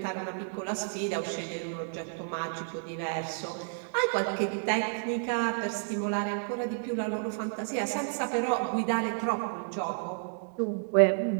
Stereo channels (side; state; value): left; silent; 57 dB below the other